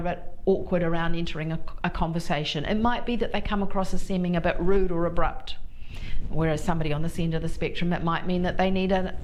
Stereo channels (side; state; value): both; identical; correlation 1.00